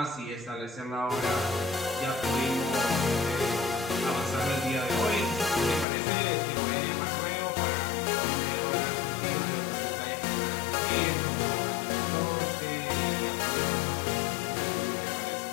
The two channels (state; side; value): drops out; right; at 5.9 s